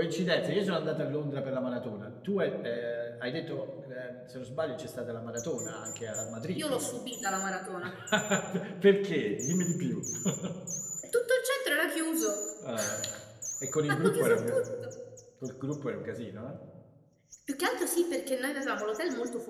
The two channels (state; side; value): identical; both; correlation 1.00